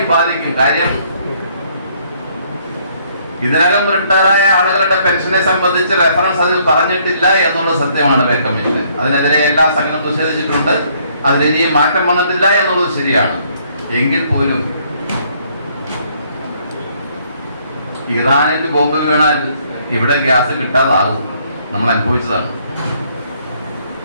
ബാധിക്കും. കാര്യം ഇതിനകം റിട്ടയറായ ആളുകളുടെ പെൻഷനെ സംബന്ധിച്ച് റെഫറൻസ് അതിൽ പറഞ്ഞിട്ടില്ല എന്നുള്ളത് സത്യമാണ്. പേ കമ്മീഷൻ അതിനെതിരെ എല്ലാ സംഘടനയും പ്രതിഷേധിച്ചിട്ടുണ്ട്. അതിലിനിയും മാറ്റം വന്നിട്ടില്ല എന്നുള്ളത് ശരിയാണ്. എങ്കിൽ പോലും ഇറാനിൽ ബോംബ് വീണാൽ ഇവിടെ ഗ്യാസ് കിട്ടാതാകും. നമ്മൾ അനുഭവിച്ചതാണ്.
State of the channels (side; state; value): both; inverted; correlation -0.66